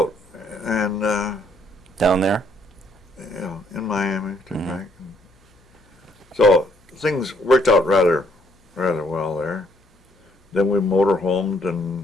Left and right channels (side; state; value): both; normal; correlation 0.69